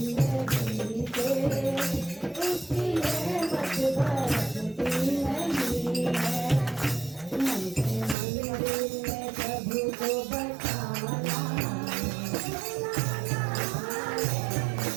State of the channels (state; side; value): drops out; left; at 8.2 s